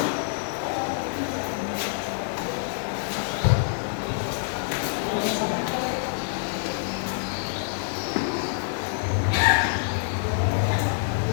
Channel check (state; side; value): silent; right; digital silence